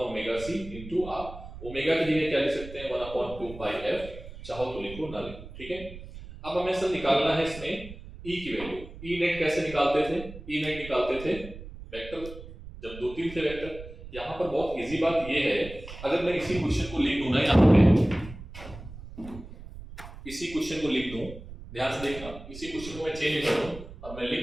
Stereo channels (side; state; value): right; noise; rumble, 14 dB below the sound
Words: × R। ओमेगा की जगह क्या लिख सकते हैं, 1/2πf, चाहो तो लिखो ना लिखो, ठीक है। अब हमें सर निकालना है इसमें E की वैल्यू। E नेट कैसे निकालते थे, E नेट निकालते थे वेक्टर, जब 2-3 थे वेक्टर। यहाँ पर बहुत इजी बात ये है, अगर मैं इसी क्वेश्चन को लिख दूं ना, यहाँ पे इसी क्वेश्चन को लिख दूं, ध्यान से देखना, इसी क्वेश्चन को मैं चेंज करूं और मैं